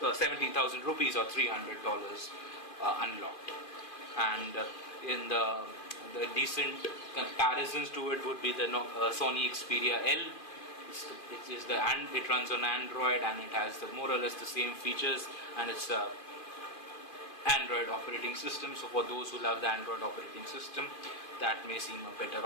or 17,000 rupees or $300 unlocked. And in the decent comparisons to it would be the Sony Xperia L. It runs on Android, and it has more or less the same features, and it's a Android operating system. So for those who love the Android operating system, that may seem a better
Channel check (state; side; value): late; right; 2.4 ms